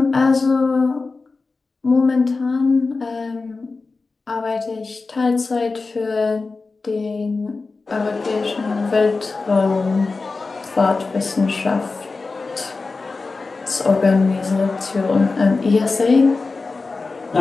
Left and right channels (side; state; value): right; quieter; 3.9 dB